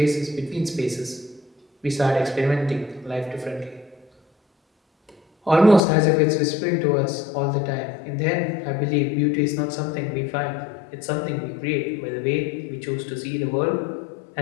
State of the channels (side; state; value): right; drops out; at 5.8 s